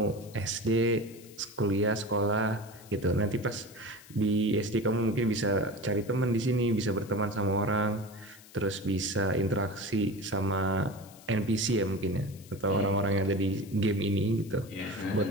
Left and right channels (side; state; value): left; noise; hiss, 22 dB below the sound